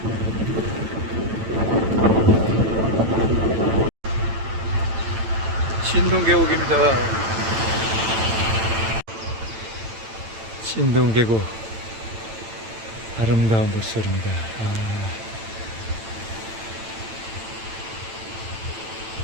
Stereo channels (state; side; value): late; left; 9.0 ms